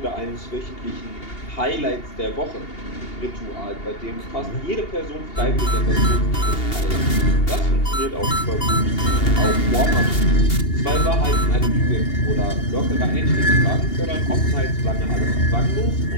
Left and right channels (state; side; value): late; right; 2.8 ms